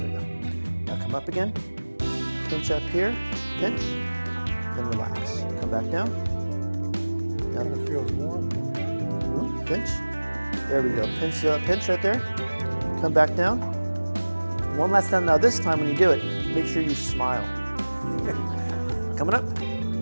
There we go. Now come up again. Pinch up here. Pinch. Then relax. Come back down. Now It feels warm. Pinch. There we go. Pinch, pinch right there. Come back down. One last time. Now this time when you do it, make sure you smile. Coming up.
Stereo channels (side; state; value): both; inverted; correlation -1.00